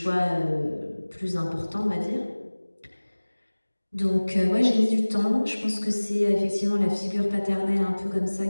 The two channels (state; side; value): inverted; both; correlation -1.00